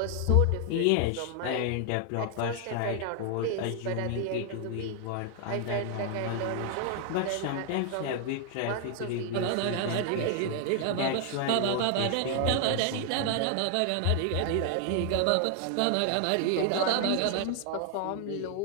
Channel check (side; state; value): both; different; correlation 0.00